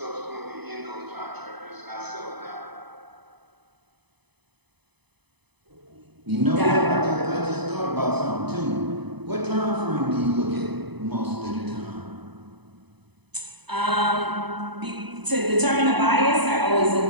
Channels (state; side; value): late; left; 0.99 ms